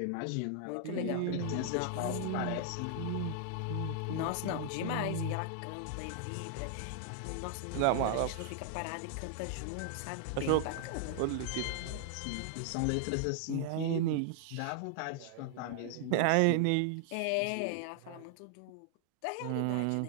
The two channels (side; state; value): both; different; correlation 0.00